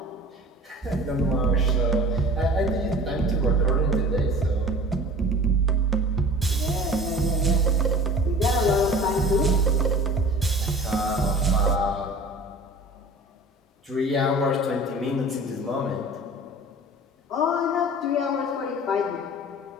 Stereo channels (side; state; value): both; normal; correlation 0.42